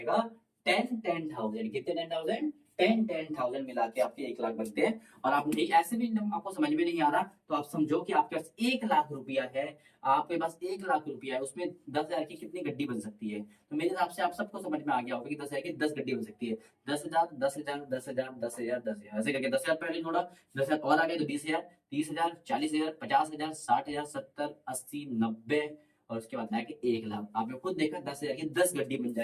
10,000। कितने 10,000? 10,000 मिला के आपके 1 लाख बनते हैं। और आप नहीं, ऐसे भी आपको समझ में नहीं आ रहा तो आप समझो कि आपके पास 1 लाख रुपया है, आपके पास 1 लाख रुपया है, उसमें 10,000 की कितनी गड्डी बन सकती है। तो मेरे हिसाब से आप सबको समझ में आ गया होगा कि 10,000 की 10 गड्डी बन सकती है। 10,000 10,000 10,000 10,000 10,000 ऐसे करके 10,000 पहले जोड़ा, 10,000 और आ गए तो 20,000 30,000 40,000 50,000 60,000 70 80 90, और उसके बाद आया कि 1 लाख। आपने खुद देखा 10,000 की 10 गड्डी बन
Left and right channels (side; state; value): both; identical; correlation 1.00